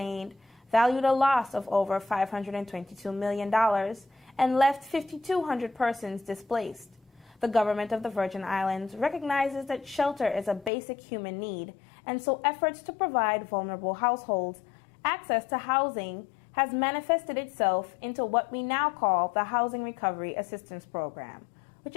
valued a loss of over $522 million and left 5,200 persons displaced. The government of the Virgin Islands recognizes that shelter is a basic human need, and so efforts to provide vulnerable households access to housing has manifested itself into what we now call the Housing Recovery Assistance Program, which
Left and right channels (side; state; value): right; drops out; at 10.7 s